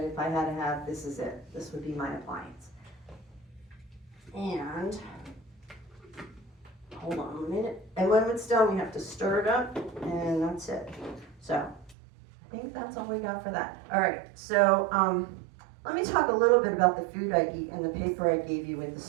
if I had to have, this is it. This would be my appliance. And hold on a minute. And when it's done, we have to stir it up, and that's it. So I think that's all we got for that. All right, so let me talk a little bit about the food I eat and the paper I gave you with the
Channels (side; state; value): left; drops out; at 12.0 s